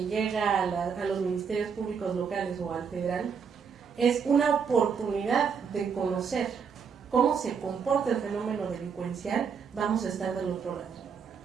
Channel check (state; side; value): quieter; left; 6.4 dB